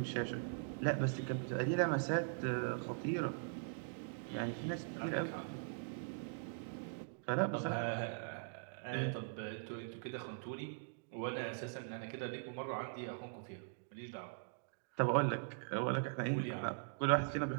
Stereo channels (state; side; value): silent; left; digital silence